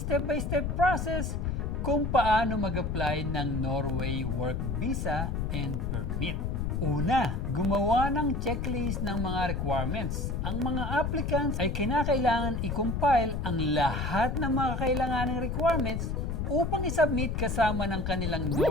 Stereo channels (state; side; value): noise; left; rumble, 1 dB below the sound